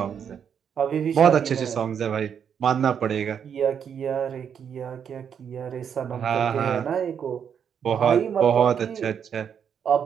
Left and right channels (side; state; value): left; quieter; 7.8 dB